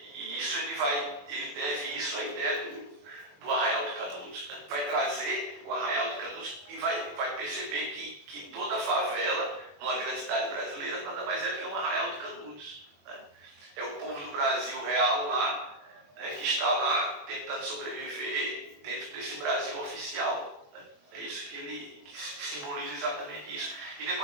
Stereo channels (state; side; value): late; left; 21 ms